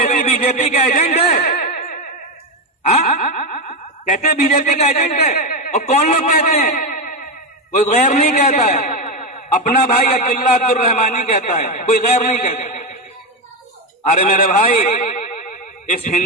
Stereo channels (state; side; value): normal; both; correlation 0.12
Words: بی جے پی کا ایجنٹ ہے۔ کہتے ہیں بی جے پی کا ایجنٹ ہے، اور کون لوگ کہتے ہیں؟ کوئی غیر نہیں کہتا ہے، اپنا بھائی عبداللہ عبدالرحمانی کہتا ہے، کوئی غیر نہیں کہتا۔ ارے میرے بھائی، اس